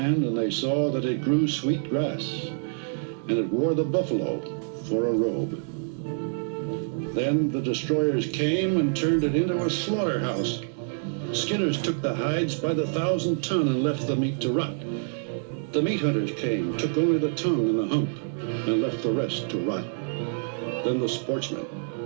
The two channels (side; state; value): left; silent; digital silence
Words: and they saw that it grew sweet grass, and it wore the buffalo for a robe. Then the destroyers came and turned it into a slaughterhouse. Skinners took the hides by the 1,000 ton and left the meat to rot. The meat hunters came, took only the tongue and the hump, and left the rest to rot. Then the sportsmen,